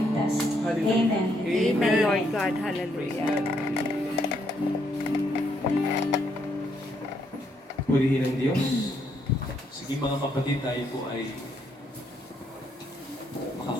Hallelujah. Amen. Amen, Lord God. Hallelujah. Purihin ang Diyos. Sige mga kapatid, tayo po ay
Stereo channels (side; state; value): both; normal; correlation 0.74